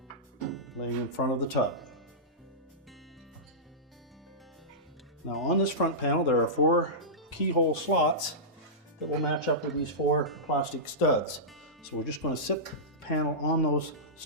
laying in front of the tub. Now, on this front panel, there are 4 keyhole slots that will match up with these 4 plastic studs. So we're just going to sit the panel on those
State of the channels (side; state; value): both; normal; correlation -0.16